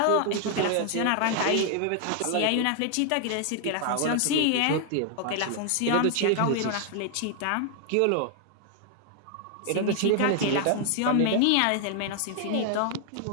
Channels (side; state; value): both; different; correlation 0.00